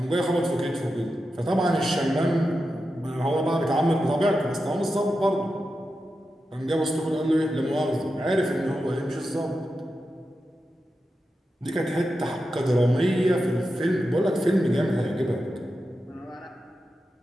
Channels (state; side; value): normal; both; correlation 0.90